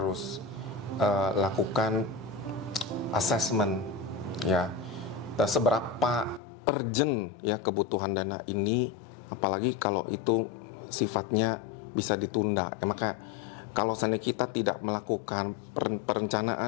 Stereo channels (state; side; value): drops out; right; at 6.4 s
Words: lakukan assessment ya. Dan seberapa urgent ya kebutuhan dana ini, apalagi kalau itu sifatnya bisa ditunda. Ya, maka kalau seandainya kita tidak melakukan